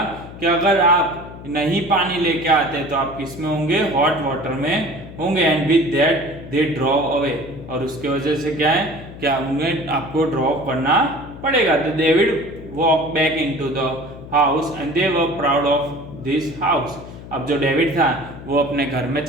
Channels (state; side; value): noise; left; hum, 14 dB below the sound